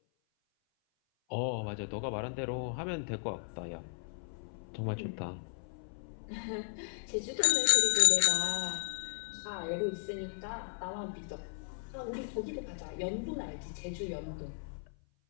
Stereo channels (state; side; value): silent; right; 54 dB below the other